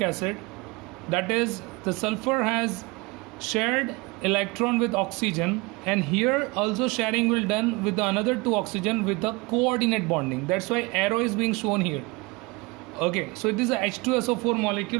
acid, that is the sulfur has shared electron with oxygen, and here also sharing will done with the another two oxygen with the coordinate bonding. That's why arrow is being shown here. Okay, so it is a H2SO4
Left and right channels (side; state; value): left; quieter; 25.6 dB